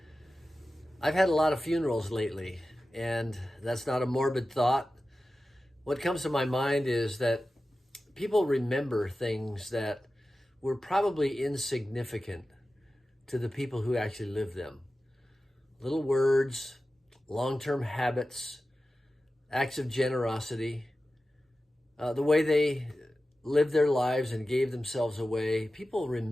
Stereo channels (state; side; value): normal; both; correlation 0.94